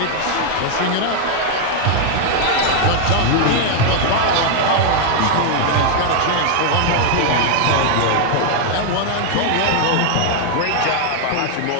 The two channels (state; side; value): different; both; correlation 0.00